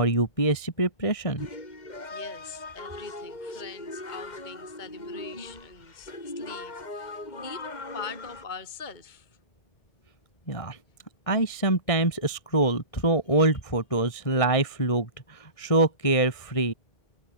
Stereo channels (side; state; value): right; late; 1.6 ms